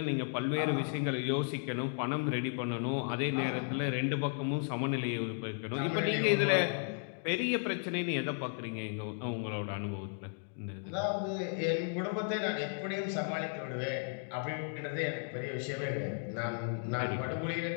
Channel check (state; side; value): silent; right; 55 dB below the other